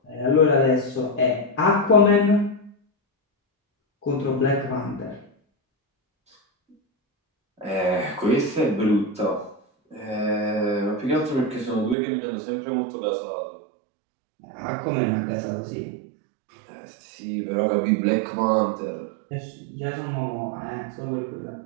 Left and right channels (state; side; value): drops out; left; at 12.0 s